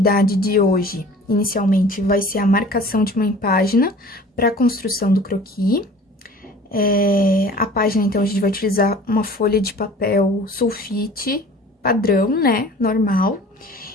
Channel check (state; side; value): normal; both; correlation 0.45